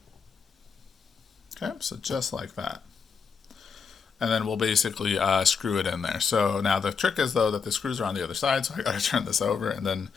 Okay, so just like that. And then we'll basically screw it in there. So now the trick is, though, that the screws are on the other side, so I gotta turn this over and then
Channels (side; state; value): right; quieter; 5.8 dB